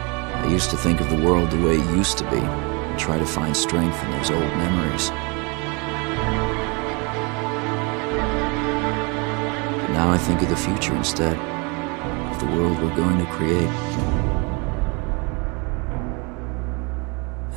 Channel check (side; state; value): left; quieter; 30.0 dB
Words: I used to think of the world the way it used to be, and try to find strength in those old memories. But now I think of the future instead, of the world we're going to create.